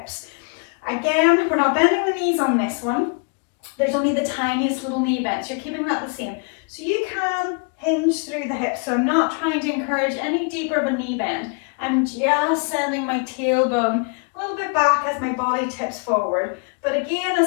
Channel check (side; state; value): right; quieter; 37.1 dB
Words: Again, we're not bending the knees on this one. There's only the tiniest little knee bends. You're keeping that the same. So you can hinge through the hips. So I'm not trying to encourage any deeper of a knee bend. I'm just sending my tailbone a little bit back as my body tips forward. But again,